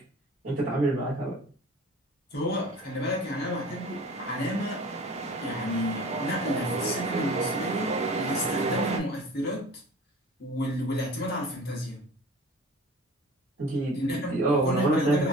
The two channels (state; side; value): normal; both; correlation 0.42